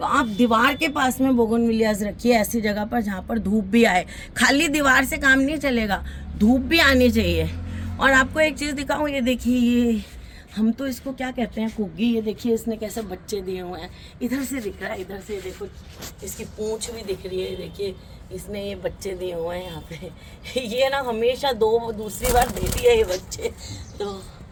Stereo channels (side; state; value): both; identical; correlation 1.00